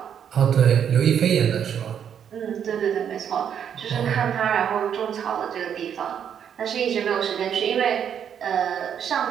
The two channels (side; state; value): left; quieter; 8.5 dB